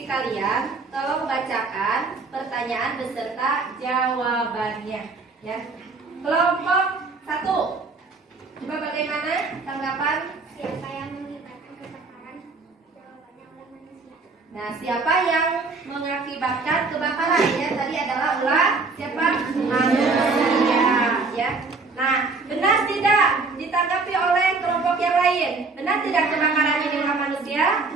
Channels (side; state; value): left; quieter; 4.0 dB